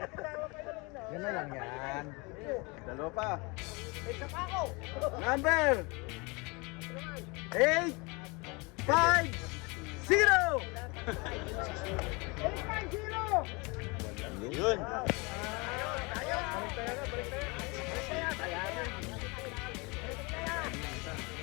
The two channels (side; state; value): right; quieter; 27.9 dB